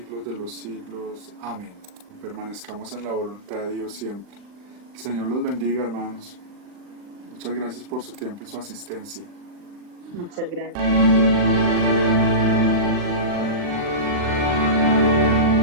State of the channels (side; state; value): left; late; 39 ms